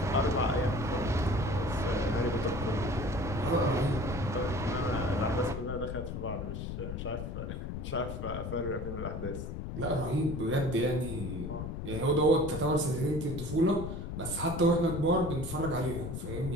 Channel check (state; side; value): noise; left; rumble, 5 dB below the sound